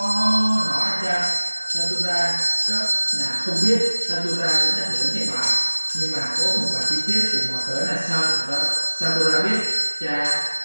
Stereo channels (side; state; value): both; inverted; correlation -1.00